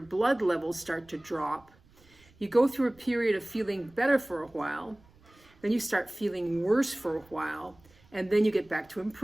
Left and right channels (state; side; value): noise; right; rumble, 29 dB below the sound